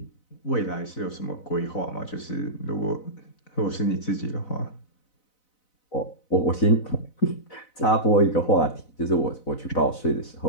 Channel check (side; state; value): right; late; 4.0 ms